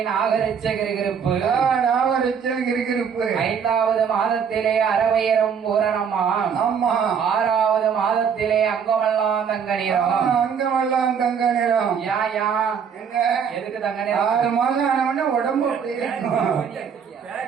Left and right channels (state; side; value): quieter; left; 7.0 dB